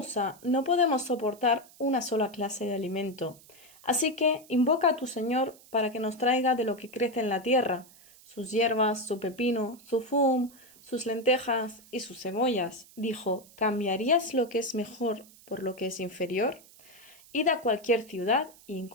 no podemos soportar una sola clase de alimento, así que invoca a tu Señor para que nos traiga de lo que crece en la tierra, sus hierbas, su pepino, su fum, sus lentejas y sus cebollas. Dijo, ¿cambiarías lo que es mejor por lo que es inferior? Id a cualquier ciudad y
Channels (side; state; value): right; noise; hiss, 24 dB below the sound